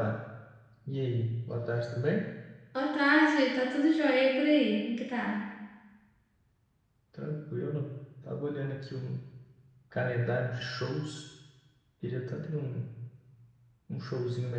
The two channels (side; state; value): both; identical; correlation 1.00